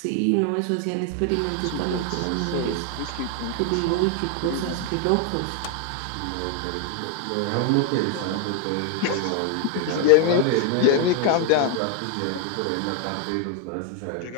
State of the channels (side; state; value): both; different; correlation 0.00